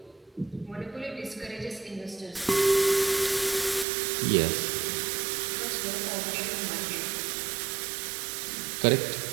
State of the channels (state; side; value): drops out; left; at 3.9 s